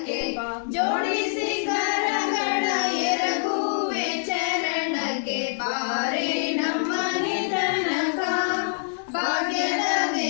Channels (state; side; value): silent; right; digital silence